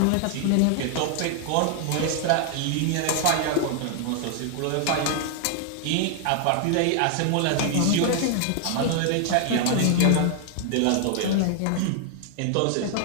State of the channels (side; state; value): both; different; correlation 0.00